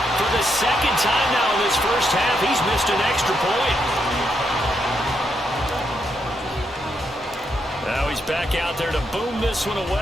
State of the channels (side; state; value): both; normal; correlation 0.80